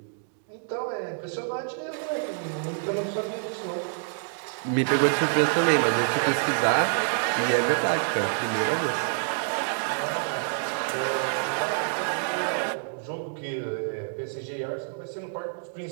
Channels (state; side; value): silent; left; digital silence